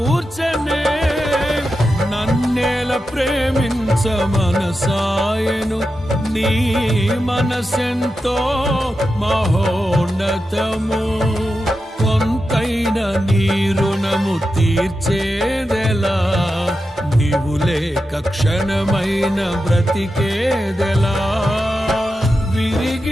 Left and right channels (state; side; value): normal; both; correlation 0.90